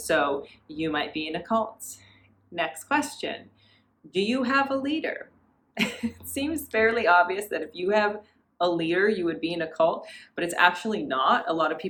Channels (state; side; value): identical; both; correlation 1.00